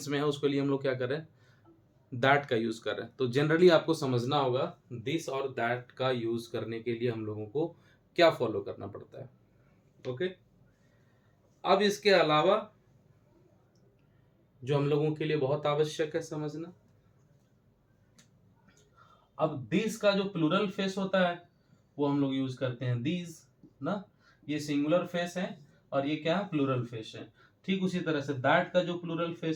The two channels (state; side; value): identical; both; correlation 1.00